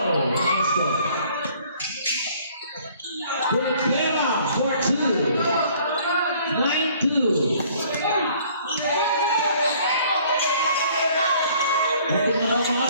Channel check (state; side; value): inverted; both; correlation -0.57